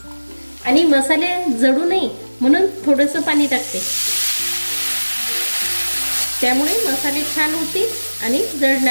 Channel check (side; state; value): both; inverted; correlation -1.00